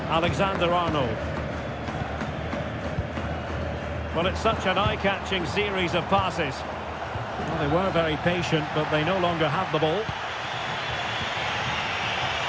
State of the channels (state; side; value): identical; both; correlation 1.00